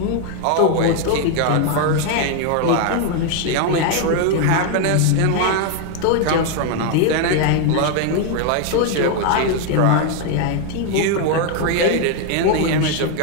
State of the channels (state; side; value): different; both; correlation 0.01